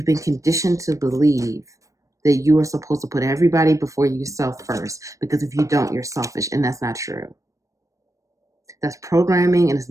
been conditioned to believe that you are supposed to put everybody before yourself first, because if you don't, you're selfish, and that's not true. That's programming, and it's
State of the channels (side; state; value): left; late; 0.16 ms